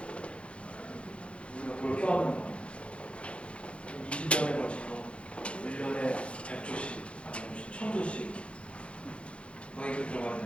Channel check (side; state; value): right; late; 0.060 ms